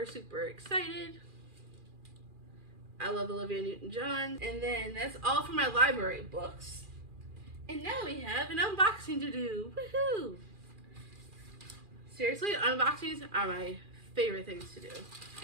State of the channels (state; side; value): late; left; 2.4 ms